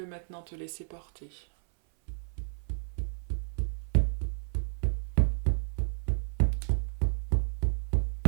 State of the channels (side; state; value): left; silent; 56 dB below the other